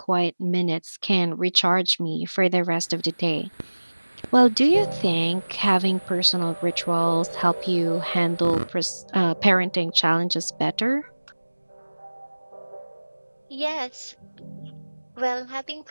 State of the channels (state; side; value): inverted; both; correlation -1.00